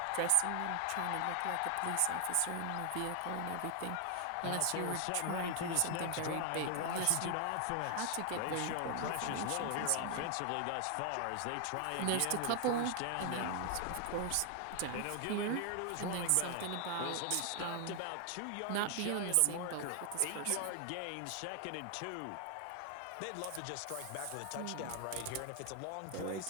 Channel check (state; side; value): different; both; correlation 0.00